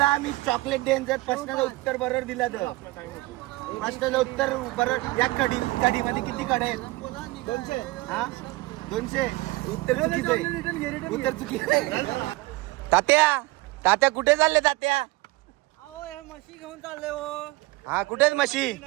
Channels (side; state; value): left; quieter; 21.2 dB